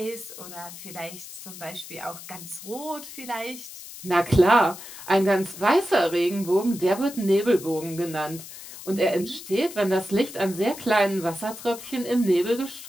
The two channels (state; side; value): noise; left; hiss, 14 dB below the sound